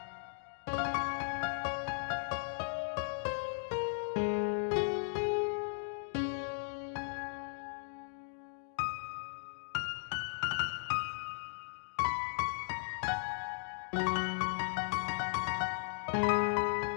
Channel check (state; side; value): silent; right; digital silence